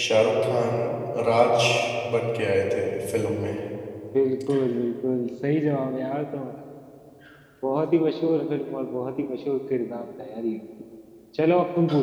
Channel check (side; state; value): both; identical; correlation 1.00